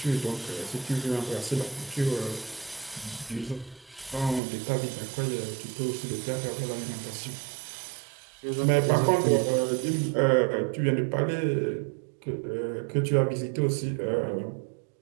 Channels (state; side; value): drops out; left; at 4.4 s